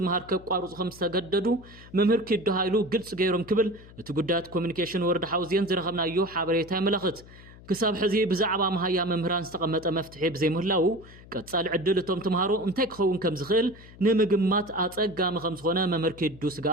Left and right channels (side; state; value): left; noise; hum, 20 dB below the sound